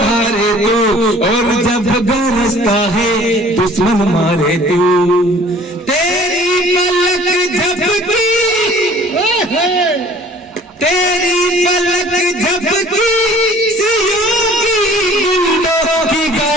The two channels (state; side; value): normal; both; correlation 0.51